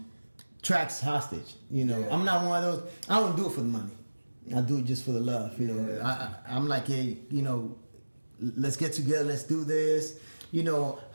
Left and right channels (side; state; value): both; inverted; correlation -1.00